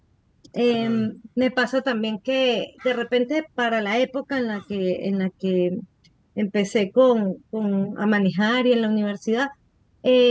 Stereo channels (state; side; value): identical; both; correlation 1.00